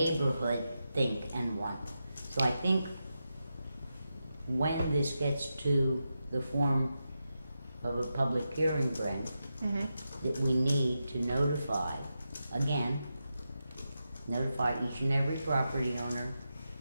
think and want? So I think when this gets to the form of a public hearing, Brent, that we need to notify each and every property owner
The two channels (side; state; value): both; inverted; correlation -0.89